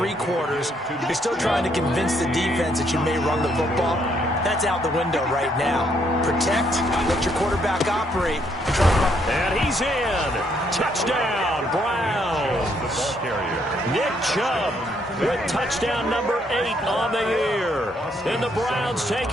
quarters, you're still trying to convince the defense that you may run the football. That's out the window right now. Protect, let your quarterback operate. And he's in. Touchdown, Browns. Nick Chubb with touchdown number 8 on the year. And the Browns take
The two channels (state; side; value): normal; both; correlation 0.71